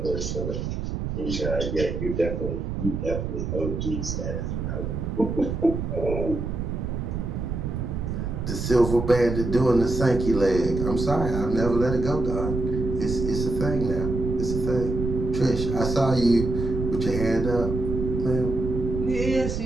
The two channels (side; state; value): right; noise; rumble, 3 dB below the sound